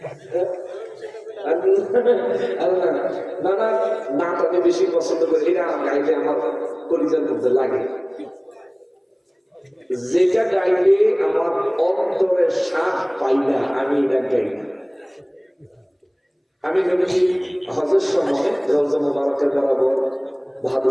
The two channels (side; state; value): both; identical; correlation 1.00